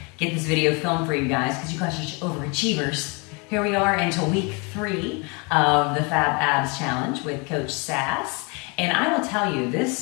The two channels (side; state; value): right; quieter; 31.0 dB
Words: get this video filmed for you guys because you guys are overachievers. Here we are into week 3 of the Fab Abs Challenge with Coach Sass. And I will tell you,